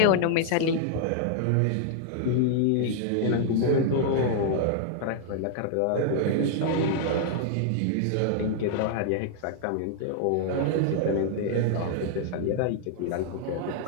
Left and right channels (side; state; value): both; different; correlation 0.00